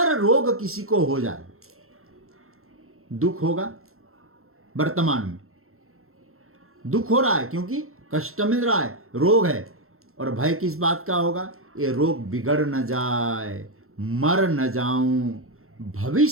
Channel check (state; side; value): late; left; 0.62 ms